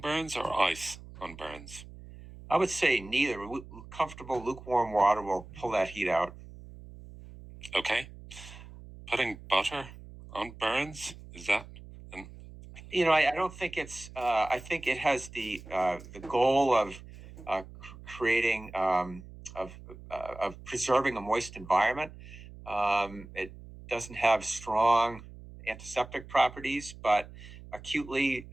burns or ice on burns? I would say neither. Comfortable lukewarm water will pull that heat out. Okay. Putting butter on burns, is that? I don't think it's. I think it has the goal of creating of preserving a moist environment. It doesn't have strong antiseptic properties, but acutely,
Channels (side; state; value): right; noise; hum, 16 dB below the sound